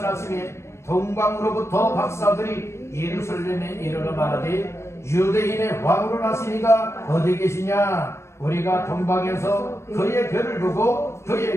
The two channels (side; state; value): right; late; 0.13 ms